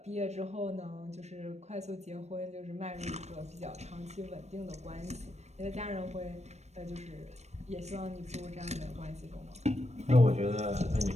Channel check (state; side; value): late; left; 0.32 ms